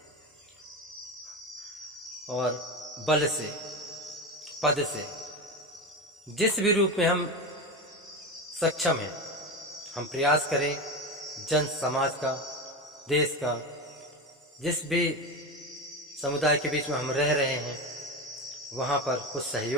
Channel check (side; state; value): both; normal; correlation 0.21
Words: और बल से, पद से, जिस भी रूप में हम सक्षम हैं, हम प्रयास करें जन समाज का, देश का, जिस भी समुदाय के बीच में हम रह रहे हैं वहाँ पर कुछ